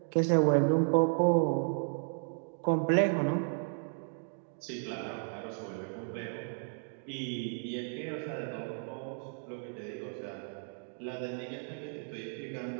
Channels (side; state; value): left; silent; 55 dB below the other